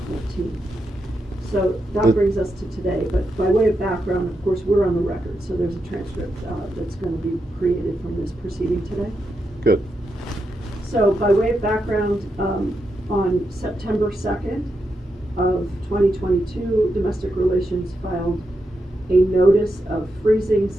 14th. So that brings us to today, but by way of background, of course, we're on the record, so there's a transcript that's going to be created from this proceeding today. Good. So by way of background, on September 2nd of 2022, Domestic Relations filed a notice of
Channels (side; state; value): both; normal; correlation 0.85